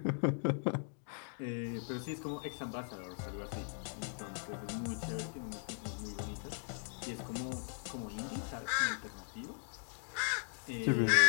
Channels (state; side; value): silent; right; 52 dB below the other